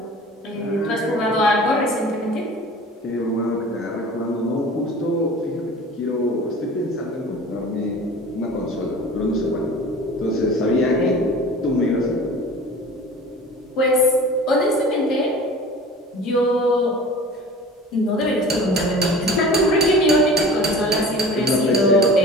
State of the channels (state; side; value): normal; both; correlation 0.40